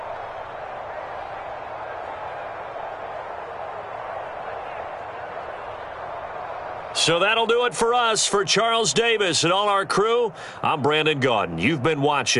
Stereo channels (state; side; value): identical; both; correlation 1.00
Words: So that'll do it for us. For Charles Davis and all our crew, I'm Brandon Gaudin. You've been